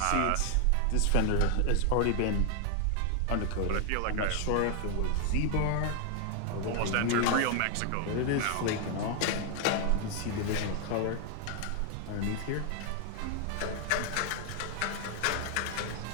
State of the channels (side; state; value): both; different; correlation 0.00